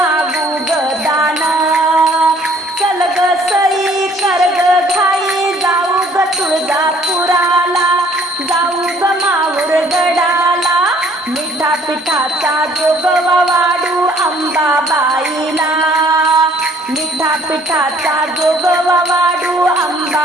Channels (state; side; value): normal; both; correlation 0.58